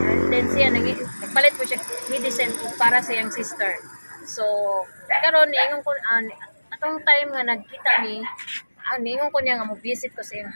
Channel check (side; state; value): both; inverted; correlation -1.00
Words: and then siya nagpalit ko siya medicine para sa iyang sister. So karon niingon ko atong time nga nagkita ni niingon ko niya nga mo visit ko sa iyang